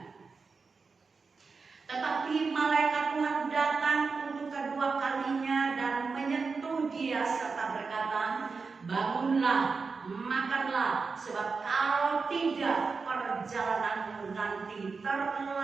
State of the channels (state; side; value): quieter; left; 4.7 dB